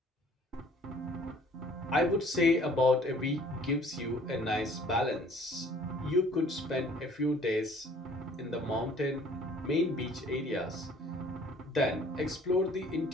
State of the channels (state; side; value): normal; both; correlation 0.54